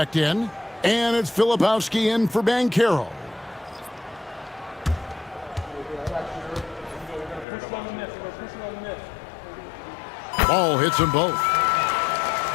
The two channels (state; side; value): drops out; right; at 7.5 s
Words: in. And it's Filipowski in for Banchero. Ball hits them both.